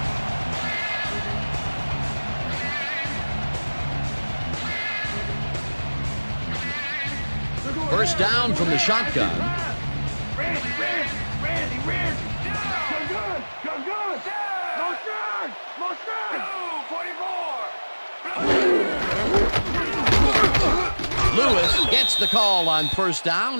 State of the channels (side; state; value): both; inverted; correlation -1.00